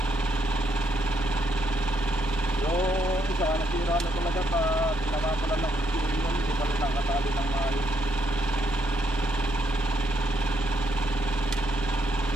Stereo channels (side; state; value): both; normal; correlation 0.76